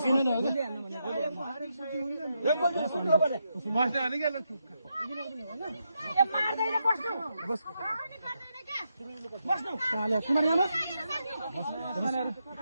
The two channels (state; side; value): inverted; both; correlation -0.83